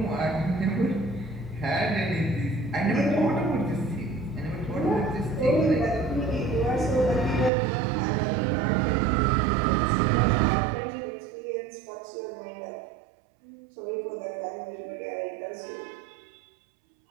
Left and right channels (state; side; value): drops out; left; at 7.5 s